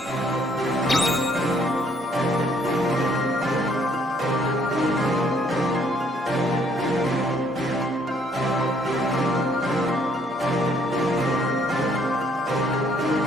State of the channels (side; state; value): both; normal; correlation 0.66